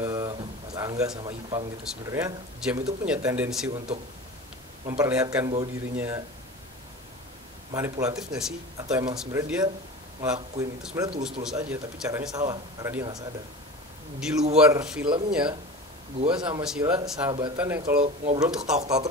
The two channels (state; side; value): normal; both; correlation 0.33